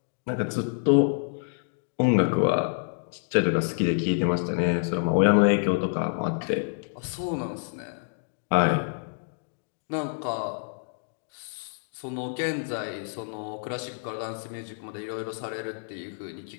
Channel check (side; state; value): right; silent; digital silence